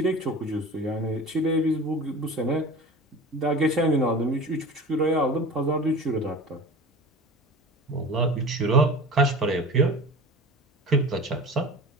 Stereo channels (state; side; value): normal; both; correlation 0.36